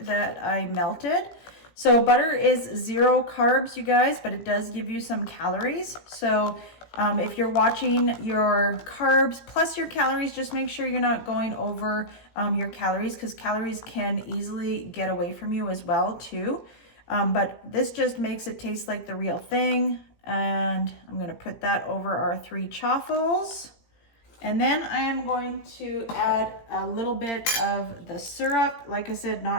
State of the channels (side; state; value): right; late; 17 ms